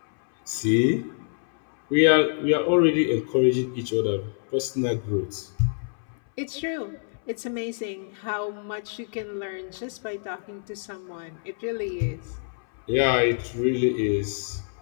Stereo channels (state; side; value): silent; right; 61 dB below the other